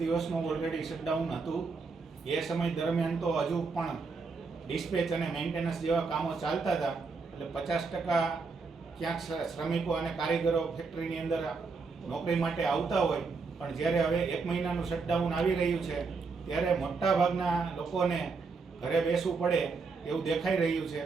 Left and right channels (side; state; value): left; quieter; 4.6 dB